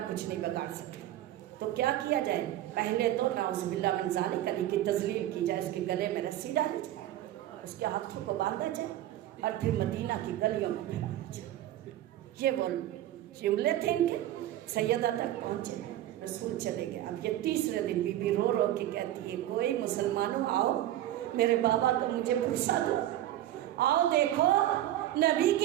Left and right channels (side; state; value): left; quieter; 13.4 dB